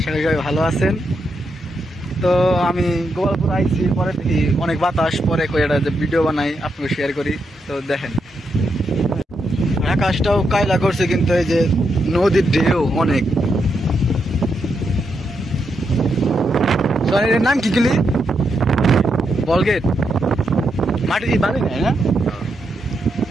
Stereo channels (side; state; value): both; normal; correlation 0.82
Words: করি সবাই ভালো আছেন। তো আমি গোপালপুর আইছি, পরে দেখি অনেক বাতাস, পরে একটা যে ভিডিও বানাই আপনাকে শেয়ার করি। তো দেখেন আকাশটাও কায়লা করছে, কিন্তু এই যে নদীর ঢেউ অনেক। এর নাম কি গেলি? বলগেট। মাটি দিয়ে বালি নেয় না?